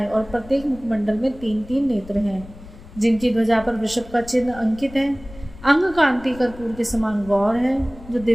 और प्रत्येक मुखमंडल में 3-3 नेत्र हैं, जिनकी ध्वजा पर वृषभ का चिन्ह अंकित है, अंग कांति कर्पूर के समान गौर है, जो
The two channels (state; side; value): noise; left; rumble, 18 dB below the sound